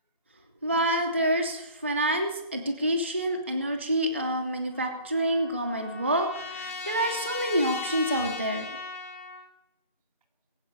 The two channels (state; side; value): inverted; both; correlation -0.46